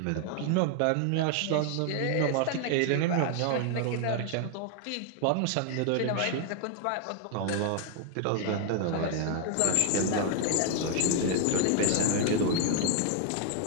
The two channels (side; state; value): both; different; correlation 0.00